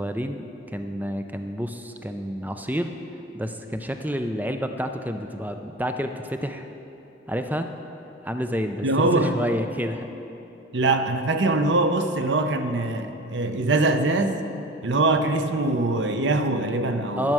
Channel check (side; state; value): both; normal; correlation 0.34